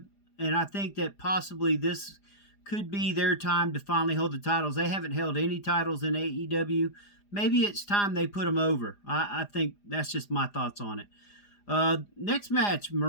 and I think that possibly this could be their time to finally hold the titles. They haven't held any titles in AEW. Maybe it's time they put them over. I think that's just my thoughts on it. Next match,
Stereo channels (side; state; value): right; late; 4.9 ms